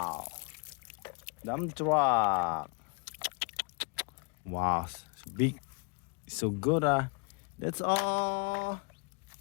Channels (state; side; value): quieter; right; 34.5 dB